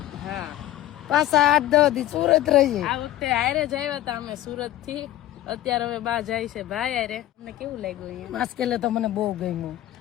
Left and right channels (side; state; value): right; quieter; 13.9 dB